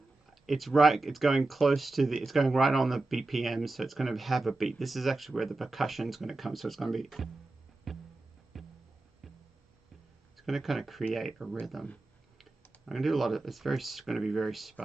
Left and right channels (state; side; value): quieter; left; 3.1 dB